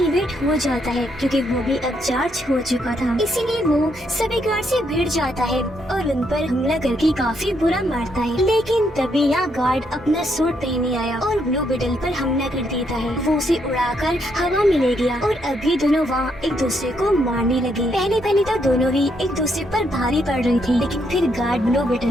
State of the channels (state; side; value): normal; both; correlation 0.75